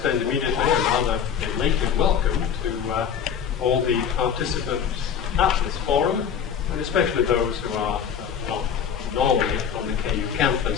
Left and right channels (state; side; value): quieter; right; 7.8 dB